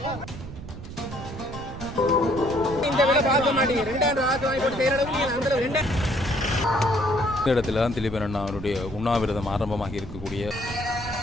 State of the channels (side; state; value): right; noise; rumble, 12 dB below the sound